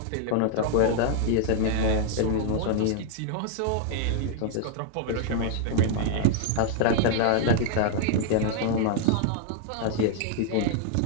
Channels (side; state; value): both; different; correlation 0.00